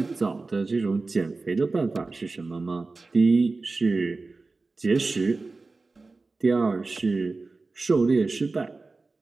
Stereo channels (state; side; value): quieter; left; 3.7 dB